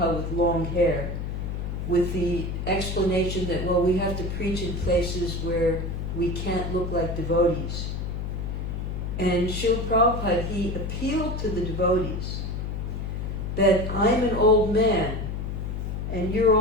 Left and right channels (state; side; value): noise; left; hum, 4 dB below the sound